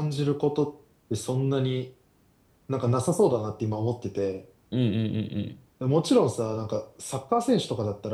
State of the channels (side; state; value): both; identical; correlation 1.00